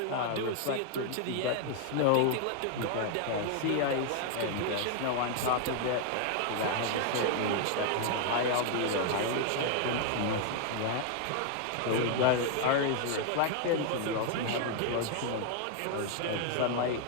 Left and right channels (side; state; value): both; different; correlation 0.00